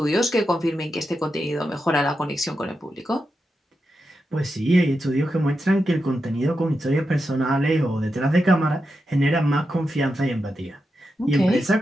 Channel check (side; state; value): both; normal; correlation 0.88